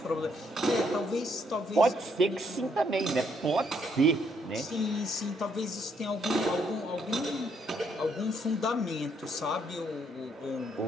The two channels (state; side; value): normal; both; correlation 0.72